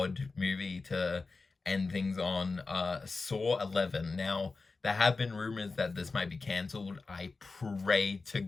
movie to end things on, Saw 11. Now, there have been rumors that this might be cancelled. I pray to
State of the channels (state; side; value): quieter; right; 4.0 dB